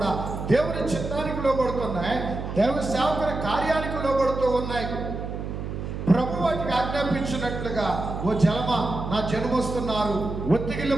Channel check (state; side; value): noise; right; hum, 6 dB below the sound